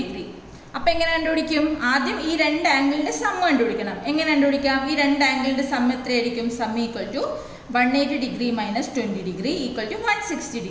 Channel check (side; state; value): both; identical; correlation 1.00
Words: അപ്പോൾ എങ്ങനെ കണ്ടുപിടിക്കും? ആദ്യം ഈ രണ്ട് ആംഗിളിൻ്റെ സം കണ്ടുപിടിക്കണം. എങ്ങനെ കണ്ടുപിടിക്കാം? ഈ രണ്ട് ആംഗിളിൻ്റെ സം എത്രയായിരിക്കും? Sum equal to 180 degree minus 20 degree equal to 160